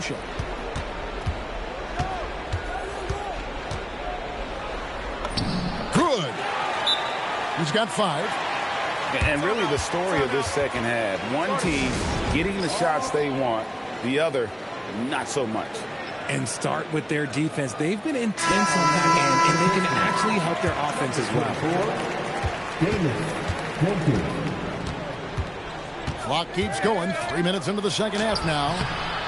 Good. He's got 5. And really the story of this second half. One team getting the shots they want, the other not so much. And start with their defense. They've been intense on that end, and they can actually help their offense as well. Clock keeps going. 3 minutes into the second half now.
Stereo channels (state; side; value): identical; both; correlation 1.00